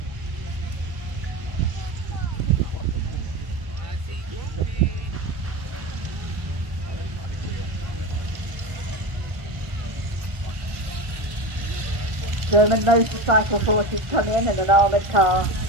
German motorcycle forces come in and an armoured car.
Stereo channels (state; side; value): late; left; 1.5 ms